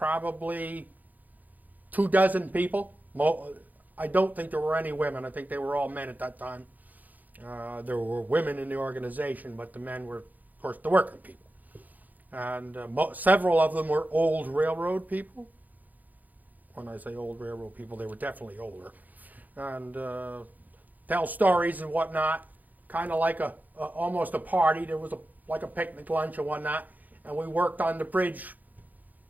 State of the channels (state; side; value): late; left; 0.082 ms